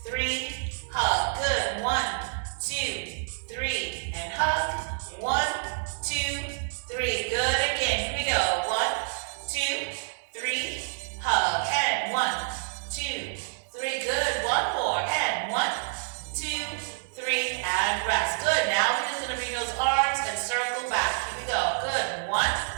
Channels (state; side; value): silent; left; 59 dB below the other